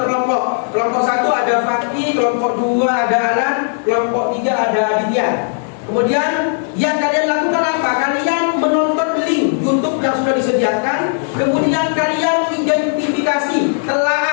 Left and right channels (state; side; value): silent; right; 61 dB below the other